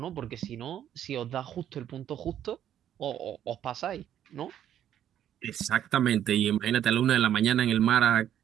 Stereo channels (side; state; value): left; quieter; 10.6 dB